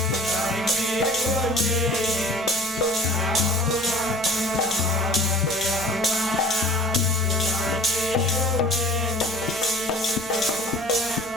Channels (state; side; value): normal; both; correlation 0.44